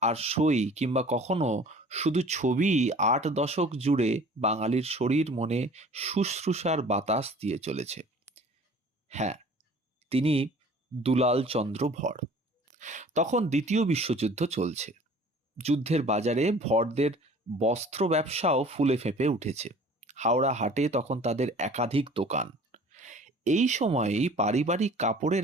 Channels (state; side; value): normal; both; correlation 0.48